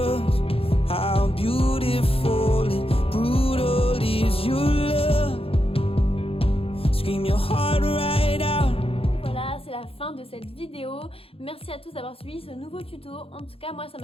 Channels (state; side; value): late; right; 0.27 ms